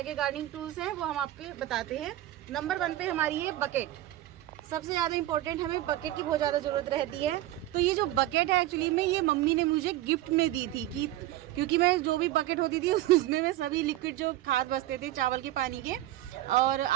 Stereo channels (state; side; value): quieter; left; 14.9 dB